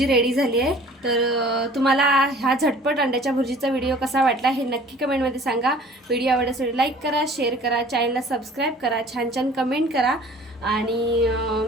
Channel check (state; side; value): normal; both; correlation 0.49